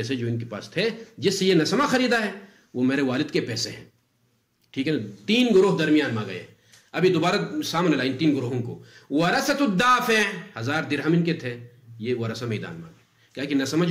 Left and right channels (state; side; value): identical; both; correlation 1.00